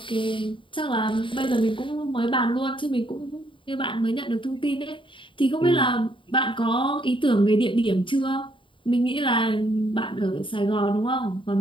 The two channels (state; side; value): late; right; 0.25 ms